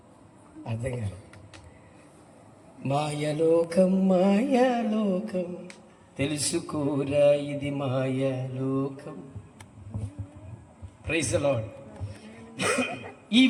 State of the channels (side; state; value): both; identical; correlation 1.00